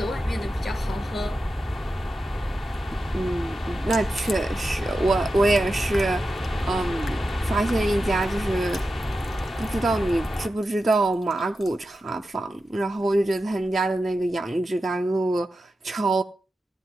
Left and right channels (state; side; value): normal; both; correlation 0.91